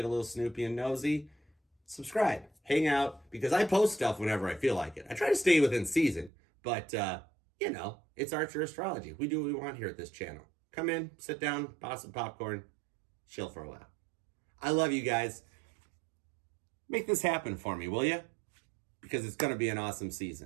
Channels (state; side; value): drops out; left; at 6.3 s